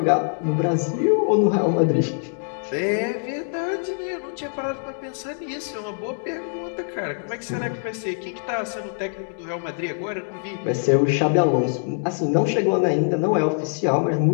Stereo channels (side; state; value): right; silent; digital silence